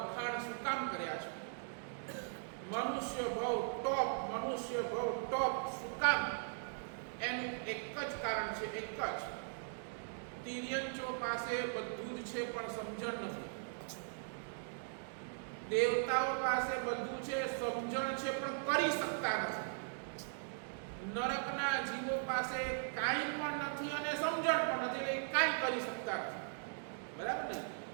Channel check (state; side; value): silent; left; digital silence